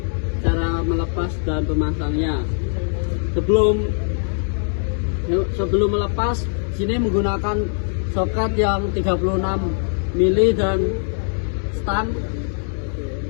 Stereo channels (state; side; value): silent; right; 63 dB below the other